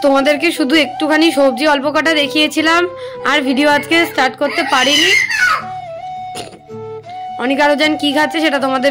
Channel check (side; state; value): both; identical; correlation 1.00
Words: তোমাদেরকে শুধু একটুখানি সবজি অল্প কাটা দেখিয়েছিলাম, আর ভিডিও আজকে স্টার্ট করতে পারিনি। অনিকা রুজান কি খাচ্ছে সেটা